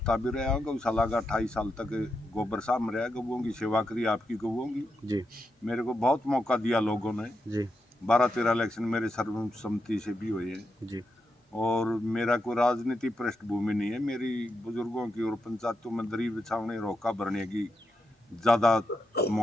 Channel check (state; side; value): normal; both; correlation 0.85